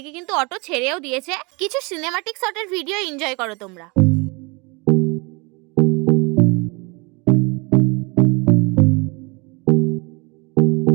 কিন্তু অটো ছেড়েও দিয়েছে। কিছু সিনেমাটিক শটের ভিডিও এনজয় করো তোমরা।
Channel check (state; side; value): quieter; left; 28.7 dB